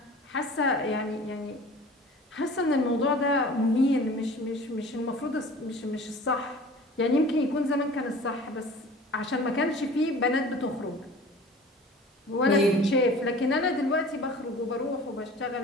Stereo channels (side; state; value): both; normal; correlation 0.43